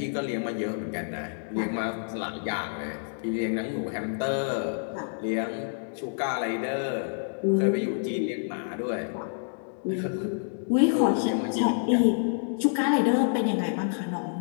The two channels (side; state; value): right; silent; digital silence